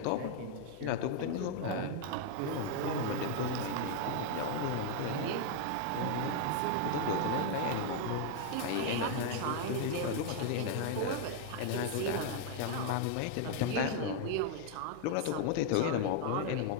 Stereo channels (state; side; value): different; both; correlation 0.00